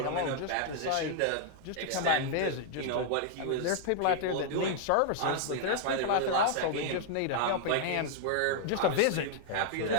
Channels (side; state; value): both; different; correlation -0.01